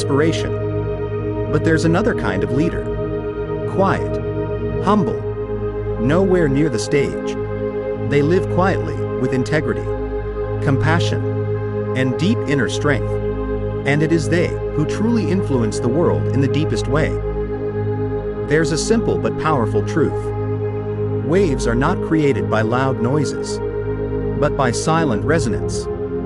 But there's another kind of leader. Quiet, humble, nowhere near the stage. They live quietly, with integrity, compassion, and deep inner strength. And it is they who truly influence the world in the deepest way. There's a simple but powerful truth. Waves are not created by loud noises, but by silent resonance.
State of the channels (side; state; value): both; identical; correlation 1.00